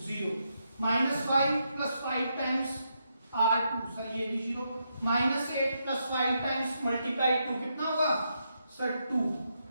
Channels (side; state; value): both; inverted; correlation -0.81